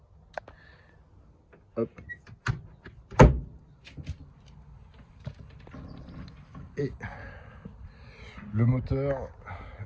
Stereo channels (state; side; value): identical; both; correlation 1.00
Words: Hop. Et le moteur,